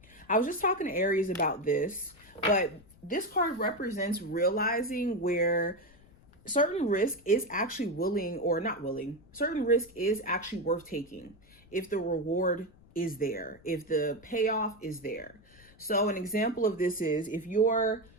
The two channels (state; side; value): noise; left; rumble, 26 dB below the sound